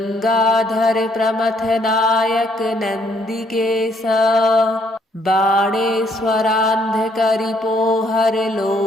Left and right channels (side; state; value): both; normal; correlation 0.68